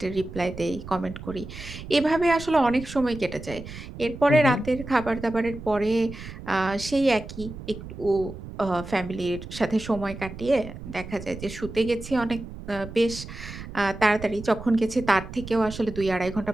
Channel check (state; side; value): noise; right; rumble, 12 dB below the sound